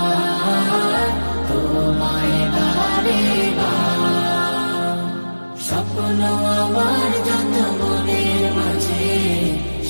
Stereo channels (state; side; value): inverted; both; correlation -1.00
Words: তোমায় বারে বার। স্বপ্ন আমার যত মনের মাঝে,